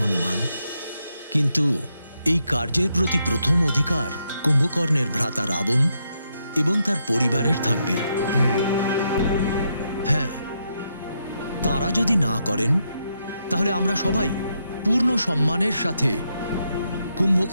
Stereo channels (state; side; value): inverted; both; correlation -0.80